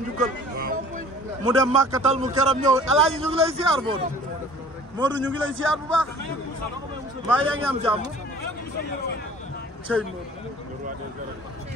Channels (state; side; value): normal; both; correlation 0.48